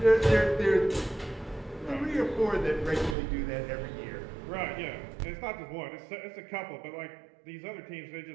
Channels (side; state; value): left; drops out; at 3.2 s